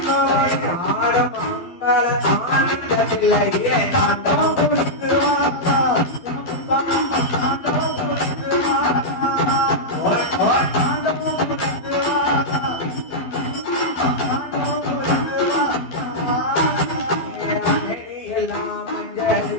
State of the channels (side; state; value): right; late; 12 ms